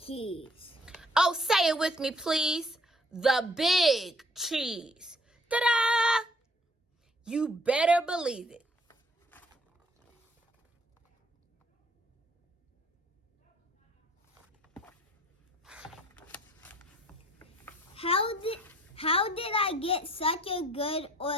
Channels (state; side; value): normal; both; correlation 0.60